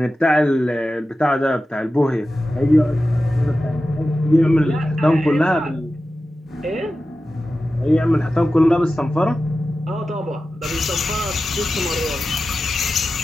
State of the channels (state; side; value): normal; both; correlation 0.93